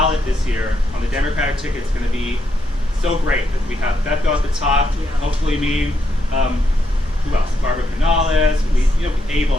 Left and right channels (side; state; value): both; normal; correlation 0.79